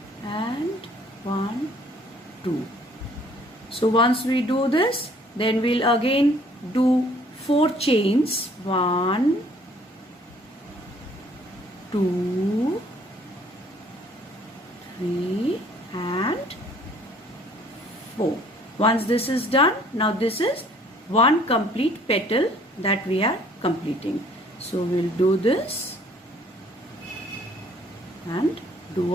and 1 2. So once we do this, then we'll again do 4 chains. 1 2 3 and 4. Once this is done, now this is one complete petal that we are completing. So we'll do this and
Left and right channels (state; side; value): normal; both; correlation 0.58